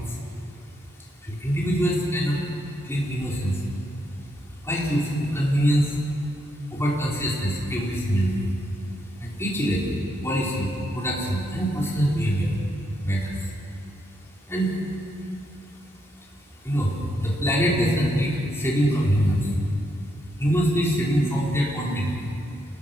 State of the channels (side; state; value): both; normal; correlation 0.79